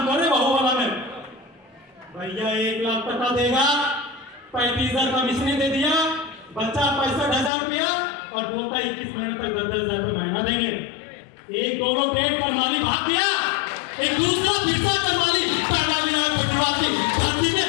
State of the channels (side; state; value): right; drops out; at 7.5 s